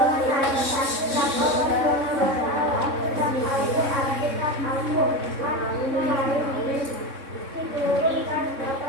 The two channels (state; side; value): late; left; 3.6 ms